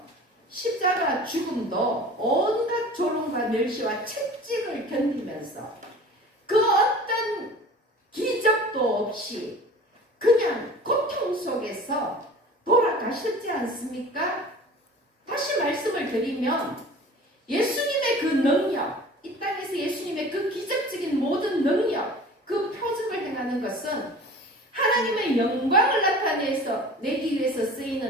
십자가 죽음도 온갖 조롱과 멸시와 채찍을 견디면서 그 어떤 기적도 없이 그냥 고통 속에서 돌아가셨지 않습니까? 다시 말씀을 드리면 예수님의 그 능력, 이 땅에서 예수님의 그 기적적인 모든 능력, 그 표적을 행하는 것은 하나님의 영광을 나타내서 내기 위해서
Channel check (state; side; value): normal; both; correlation 0.42